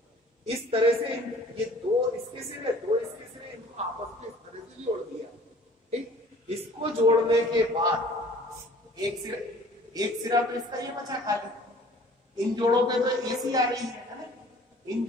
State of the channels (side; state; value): both; normal; correlation 0.50